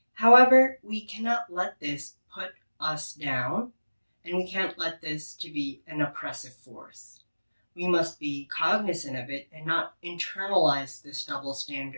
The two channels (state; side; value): inverted; both; correlation -1.00